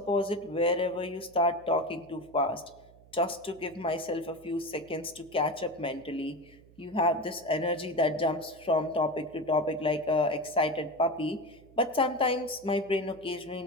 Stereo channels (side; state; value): right; noise; hum, 25 dB below the sound